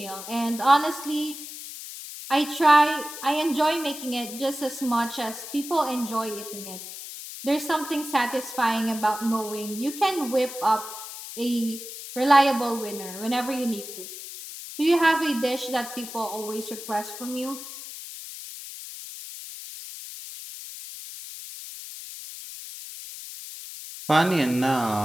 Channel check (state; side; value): noise; left; hiss, 11 dB below the sound